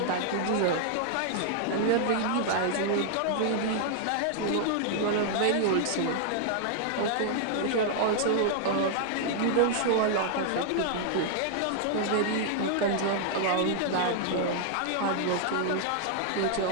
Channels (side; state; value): both; different; correlation 0.00